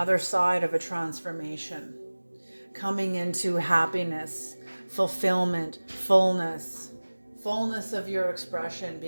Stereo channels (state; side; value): inverted; both; correlation -1.00